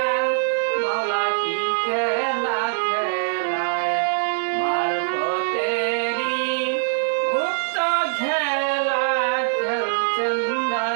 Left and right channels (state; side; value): silent; left; digital silence